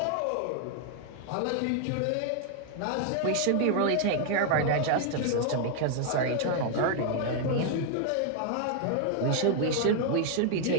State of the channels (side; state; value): both; different; correlation 0.00